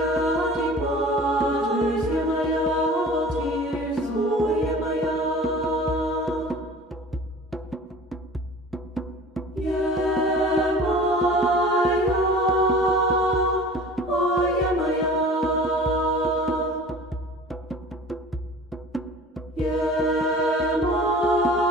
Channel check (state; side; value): normal; both; correlation 0.42